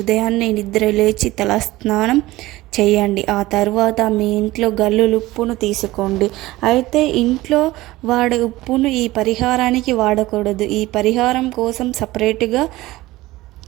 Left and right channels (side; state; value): left; quieter; 18.2 dB